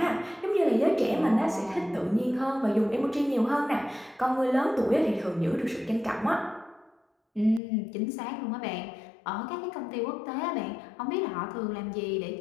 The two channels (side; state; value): right; drops out; at 7.6 s